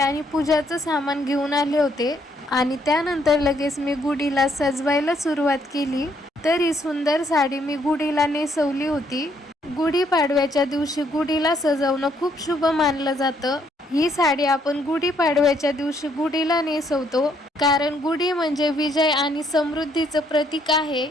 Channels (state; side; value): normal; both; correlation 0.70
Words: पूजाचं सामान घेऊन आले होते आणि त्यानंतर लगेच मी गुढीला सजवायला सुरुवात केली। तर ही सुंदर साडी मी गुढीला नेसवली होती। गुढीपाडव्याच्या दिवशी गुढीला सजवणं खूप शुभ मानलं जातं। ही साडी आपण गुढीपाडव्याच्या दिवशी गुढीला नेसवतो, कारण गुढी म्हणजे विजय आणि समृद्धीचं प्रतीक आहे।